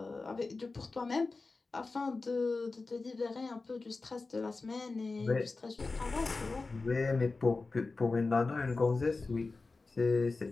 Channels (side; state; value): right; quieter; 3.8 dB